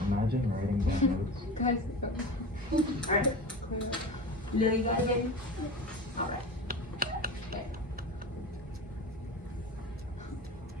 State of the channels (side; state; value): both; normal; correlation 0.30